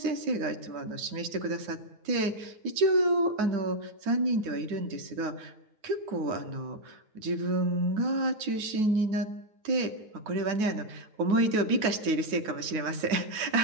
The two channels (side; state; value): left; late; 9.4 ms